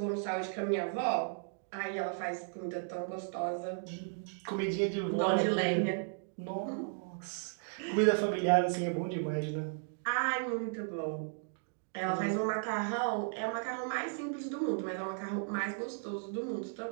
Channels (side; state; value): left; silent; digital silence